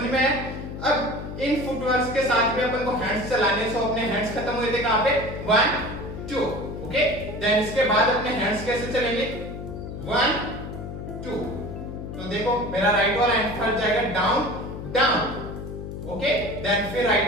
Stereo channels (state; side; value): noise; left; hum, 8 dB below the sound